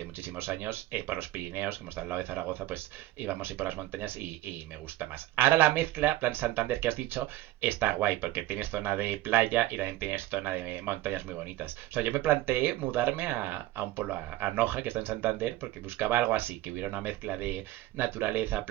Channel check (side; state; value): left; quieter; 15.9 dB